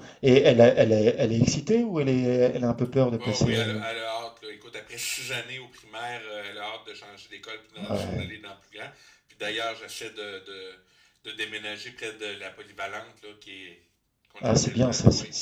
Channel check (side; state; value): both; identical; correlation 1.00